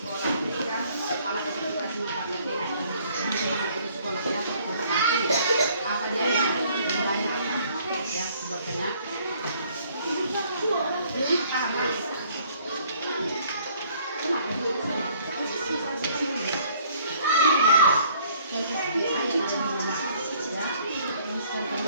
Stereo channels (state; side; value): inverted; both; correlation -0.60